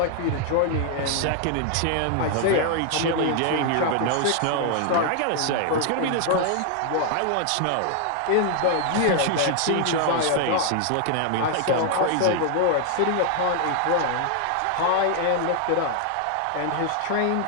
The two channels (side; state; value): both; different; correlation 0.00